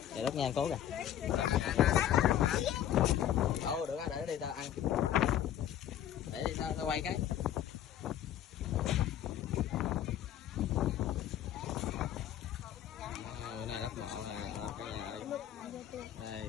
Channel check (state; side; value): quieter; right; 10.9 dB